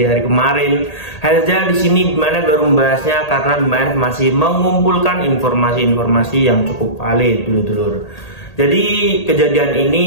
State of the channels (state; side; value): late; right; 1.8 ms